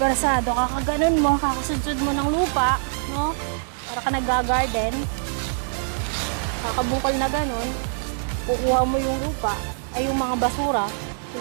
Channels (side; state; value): left; silent; digital silence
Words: persado, kakaganon mo, kakasudsud mo ng lupa, no? Para ka nag-garden. Kakabukal na ganun. Kukuha mo yung lupa. Ay, yung mga basura.